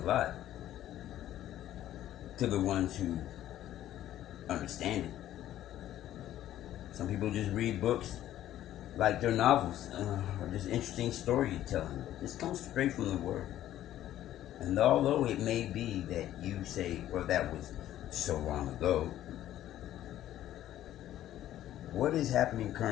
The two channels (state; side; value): quieter; right; 12.8 dB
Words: a lot to the ones who understand it. Some people just read books like they're novels or just interesting storytelling. This comes straight from the Word. And although it may be that you say, well, that was so long ago, what is happening